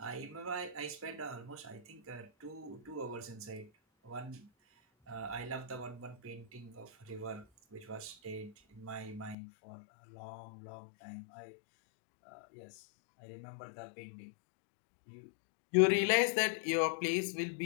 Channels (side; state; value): right; drops out; at 9.3 s